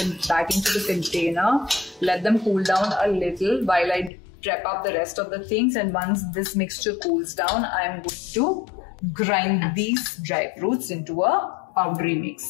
back into the container. Let them cool down a little while I prep up the rest of the things, and once this mixture cools down, I'm going to grind these dry fruits into a powdery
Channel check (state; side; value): drops out; right; at 4.1 s